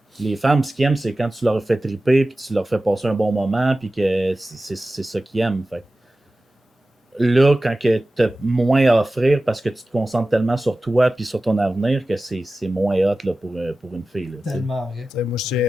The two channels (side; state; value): both; normal; correlation 0.95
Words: les femmes, ce qu'ils aiment, c'est quand tu leur fais triper puis tu leur fais passer un bon moment puis que c'est ça qu'ils aiment. Fait que là, quand tu as moins à offrir parce que tu te concentres tellement sur toi puis sur ton avenir que c'est moins hot là, pour une fille. Là, tu sais. Tellement vrai. Tu sais, moi,